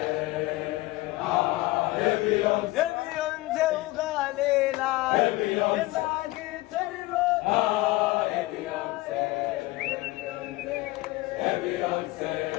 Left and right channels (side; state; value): right; quieter; 19.7 dB